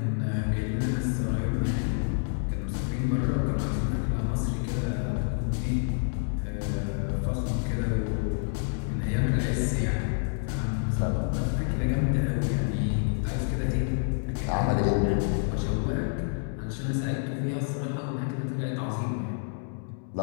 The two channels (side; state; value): right; silent; digital silence